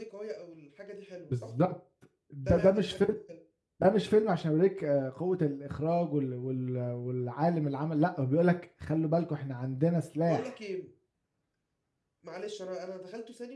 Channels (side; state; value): both; identical; correlation 1.00